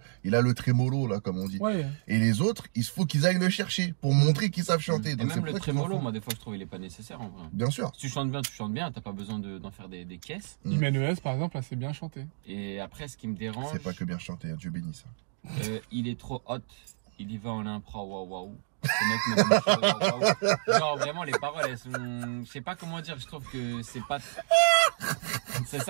Il a le trémolo, là, comme on dit. Ouais. Et les autres, il faut qu'ils aillent le chercher pour montrer qu'ils savent chanter. Et donc, même le trémolo, moi, des fois, je trouve il est pas nécessaire, en vrai. Bien sûr. Si tu chantes bien, t'as pas besoin d'en faire des caisses. Imenes, par exemple, là, c'est bien chanté. Et après, ce qui me dérange. C'est pas que bien chanté, hein, Dieu bénisse. Il est trop hot. Il y va en impro, waouh. Genre vraiment les paroles elles sont, je sais pas comment dire, je trouve que c'est pas, c'est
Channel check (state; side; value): silent; left; digital silence